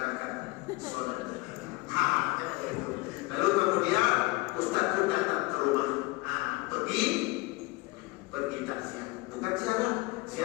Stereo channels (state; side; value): quieter; right; 23.5 dB